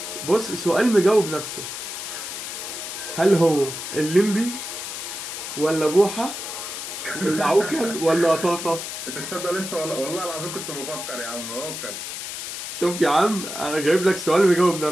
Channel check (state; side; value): noise; left; hiss, 7 dB below the sound